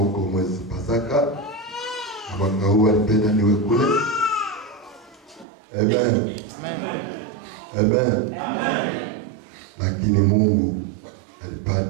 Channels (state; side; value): drops out; left; at 5.5 s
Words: mwezi Pasaka, na mwaka huu nipenda niwe kule. Amen. Amen. Lakini Mungu